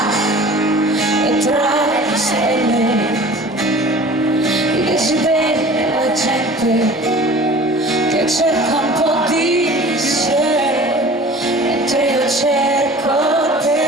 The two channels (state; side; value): normal; both; correlation 0.43